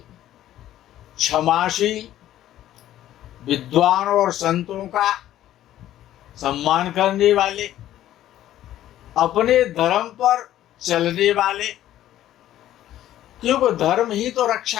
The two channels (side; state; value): right; quieter; 12.8 dB